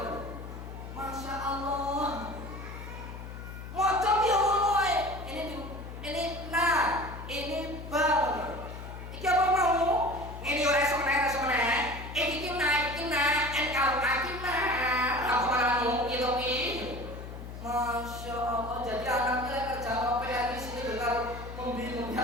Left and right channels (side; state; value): left; noise; hum, 11 dB below the sound